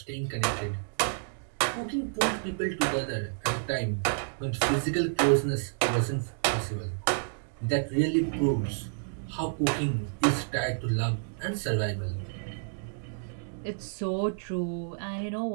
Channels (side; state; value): left; silent; digital silence